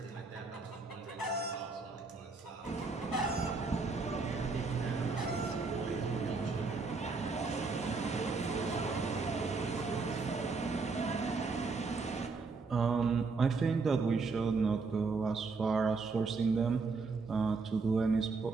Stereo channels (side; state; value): left; quieter; 4.3 dB